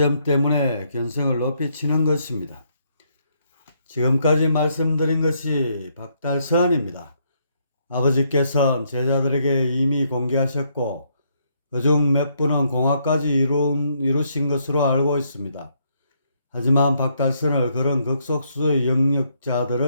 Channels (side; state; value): both; inverted; correlation -0.73